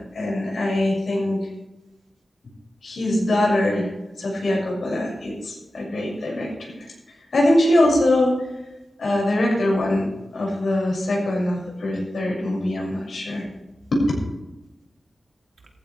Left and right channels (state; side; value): normal; both; correlation 0.93